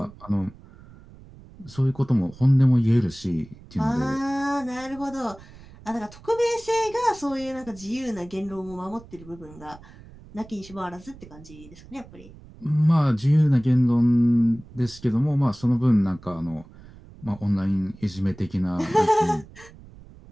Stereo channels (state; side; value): noise; right; rumble, 21 dB below the sound